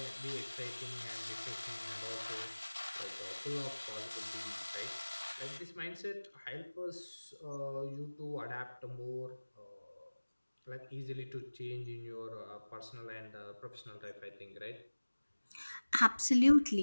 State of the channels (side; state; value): both; inverted; correlation -1.00